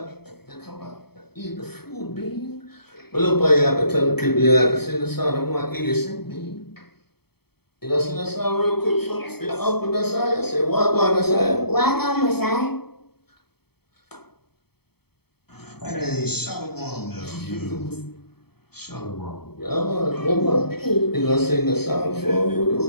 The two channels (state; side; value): late; right; 0.96 ms